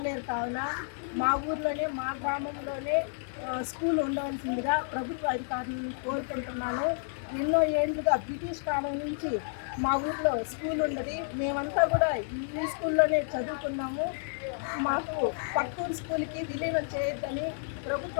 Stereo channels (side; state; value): right; silent; digital silence